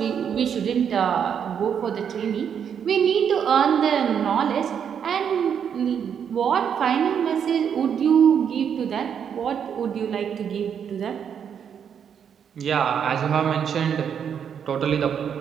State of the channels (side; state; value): left; quieter; 7.9 dB